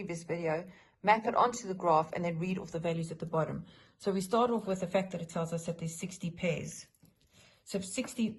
video, map it onto the graph, and then read off the values at the bottom. So we start off with the fact that it tells us that there's 60 pairs. So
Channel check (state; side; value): identical; both; correlation 1.00